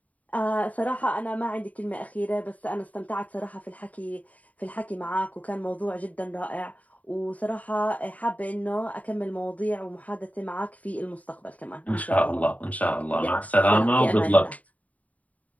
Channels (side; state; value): right; late; 0.070 ms